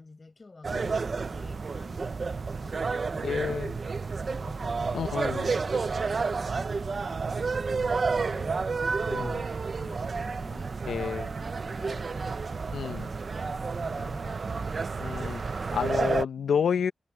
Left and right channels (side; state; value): both; normal; correlation 0.87